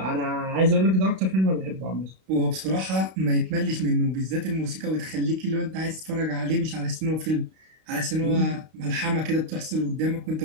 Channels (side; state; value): left; late; 32 ms